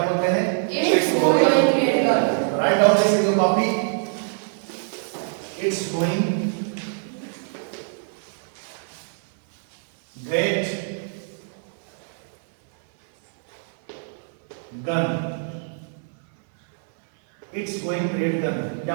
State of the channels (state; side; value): silent; left; 63 dB below the other